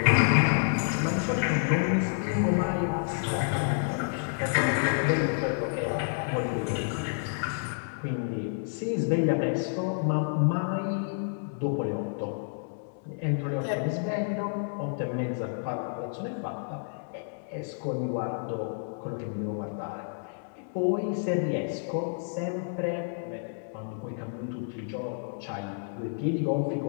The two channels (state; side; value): silent; right; digital silence